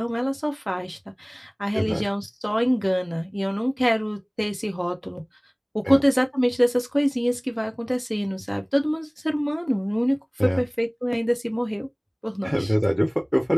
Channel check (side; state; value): both; identical; correlation 1.00